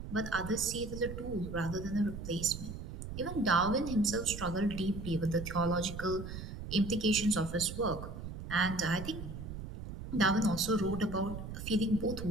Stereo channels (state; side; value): noise; right; rumble, 9 dB below the sound